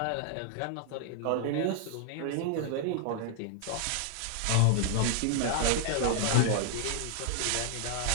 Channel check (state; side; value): different; both; correlation 0.00